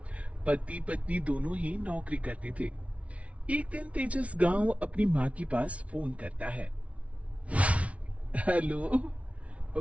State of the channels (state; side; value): late; left; 0.064 ms